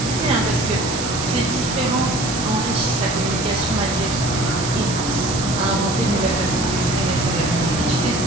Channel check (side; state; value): right; noise; hiss, 6 dB below the sound